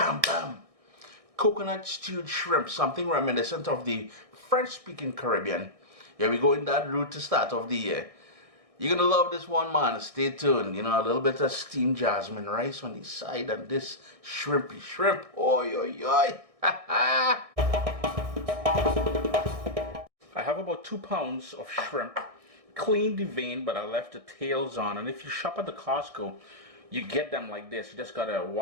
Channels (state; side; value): late; left; 1.6 ms